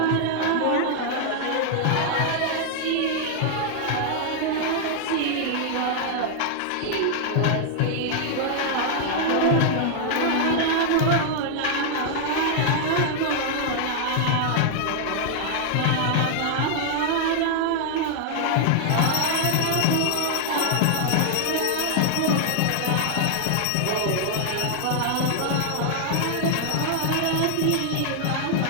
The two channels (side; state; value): both; different; correlation 0.00